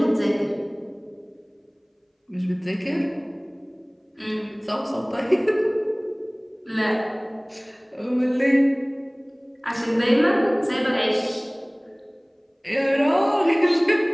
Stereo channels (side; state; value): both; identical; correlation 1.00